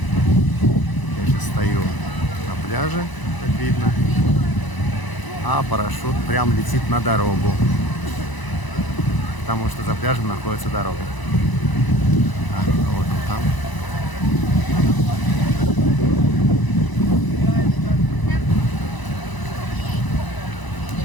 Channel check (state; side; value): late; right; 1.0 ms